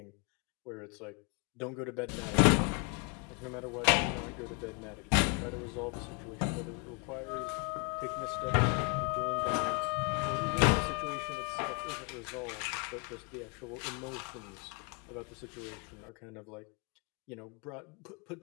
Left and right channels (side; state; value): right; quieter; 35.4 dB